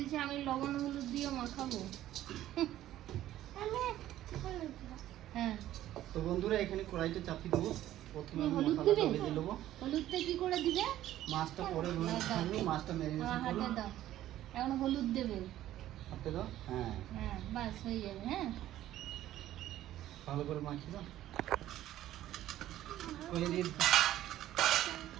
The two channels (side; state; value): left; quieter; 13.4 dB